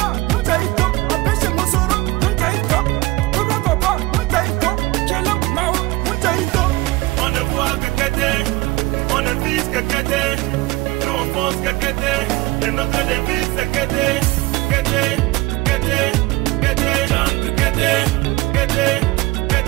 On ne voit que Kété, on ne vise que Kété, nous on pense que Kété, et notre devise c'est Kété, Kété, Kété, Kété, Kété, Kété, Kété.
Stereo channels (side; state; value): left; quieter; 20.4 dB